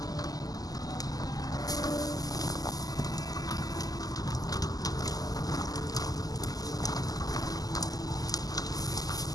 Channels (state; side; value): late; right; 0.18 ms